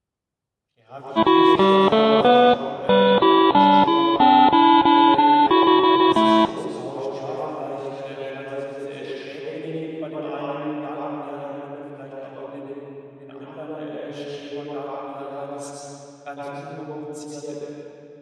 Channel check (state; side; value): identical; both; correlation 1.00